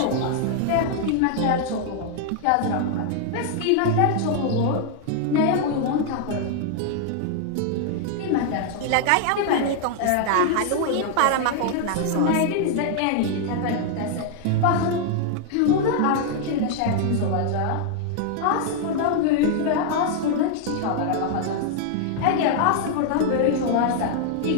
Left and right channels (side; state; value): both; different; correlation 0.00